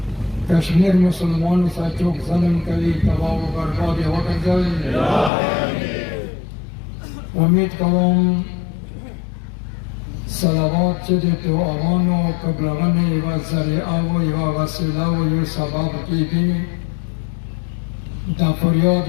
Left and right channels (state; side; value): drops out; right; at 5.3 s